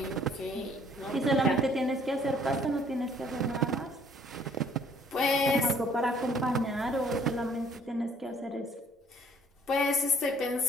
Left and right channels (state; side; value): normal; both; correlation 0.59